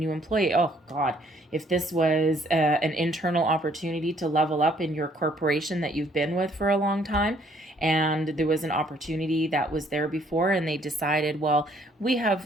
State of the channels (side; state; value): both; normal; correlation 0.64